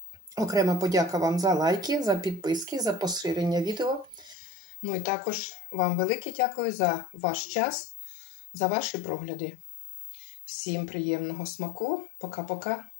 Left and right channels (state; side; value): drops out; right; at 4.4 s